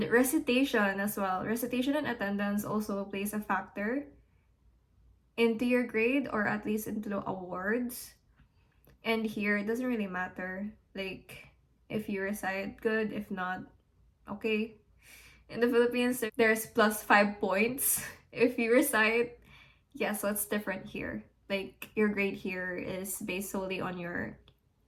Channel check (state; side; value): identical; both; correlation 1.00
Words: recitation as well. Recitation and attendance also plays a factor into your grade, or at least into the awards. And here it doesn't really matter. Like If you reside, good. If not, okay. In the Philippines, there's plus 5 points if you recite. Yeah, so it's different here. Like, your grade here is based solely on your